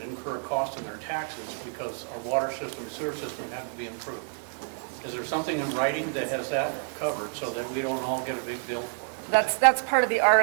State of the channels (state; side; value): quieter; left; 37.7 dB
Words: incur a cost in their taxes because our water system and sewer system have to be improved? Is there something in writing that has that covered so that we don't all get a big bill for it? That's part of the